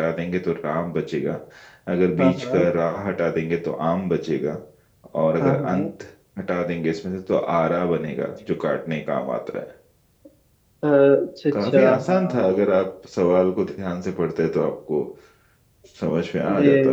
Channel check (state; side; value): identical; both; correlation 1.00